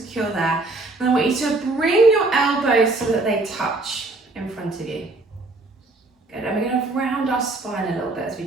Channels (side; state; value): left; quieter; 3.2 dB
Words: there. And I want you to bring your elbows so that they touch in front of you. Good, and we're going to round our spine a little bit as we